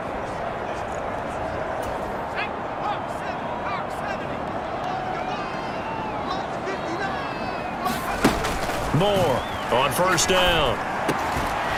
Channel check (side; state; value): both; identical; correlation 1.00